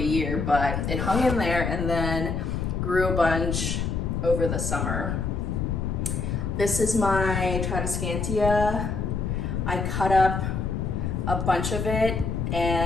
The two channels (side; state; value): left; noise; rumble, 1 dB below the sound